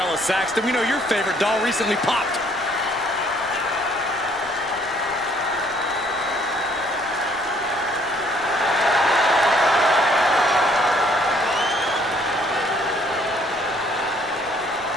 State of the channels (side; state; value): left; noise; rumble, 23 dB below the sound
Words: Saxton. We know your favorite doll recently popped.